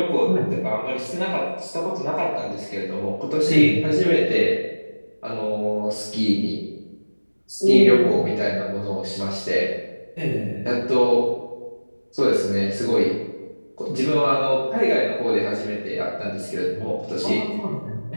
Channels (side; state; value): both; inverted; correlation -1.00